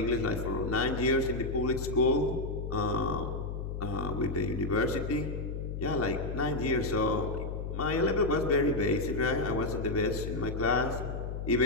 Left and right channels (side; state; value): left; noise; hum, 5 dB below the sound